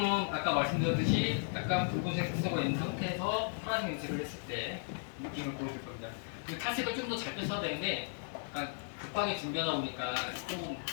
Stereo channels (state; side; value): silent; right; digital silence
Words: 아까 말씀드렸듯이 약간 붉은색 색소가 있는 상태에서 파란색 염색을 했을 때 느낌을 보여줄 겁니다. 그 탈색을 좀 더 잘 뺐어야 되는데 약간 급하게 준비하다 보니까 조금